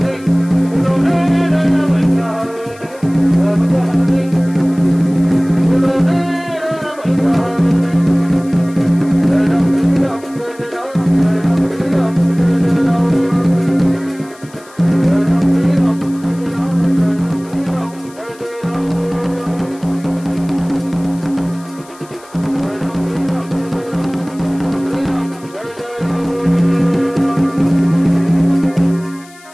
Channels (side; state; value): left; noise; hiss, 24 dB below the sound